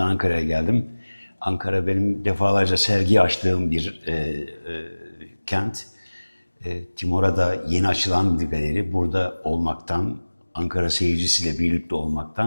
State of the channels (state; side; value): inverted; both; correlation -1.00